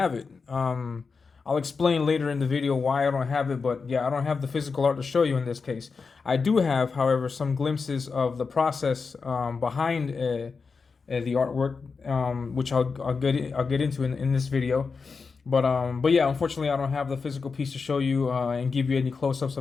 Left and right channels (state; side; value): quieter; right; 4.9 dB